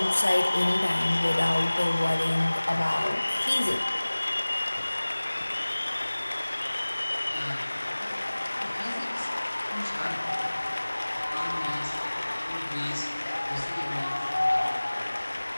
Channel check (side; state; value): both; inverted; correlation -1.00